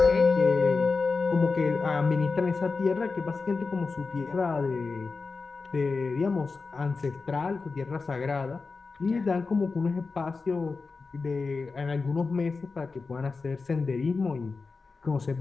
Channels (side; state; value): right; quieter; 4.3 dB